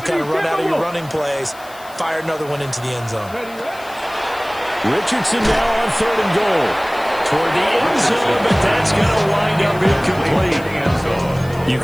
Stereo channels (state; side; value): noise; left; hiss, 22 dB below the sound